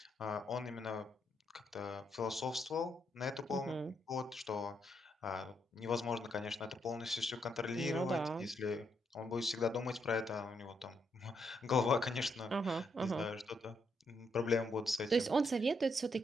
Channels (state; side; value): normal; both; correlation 0.77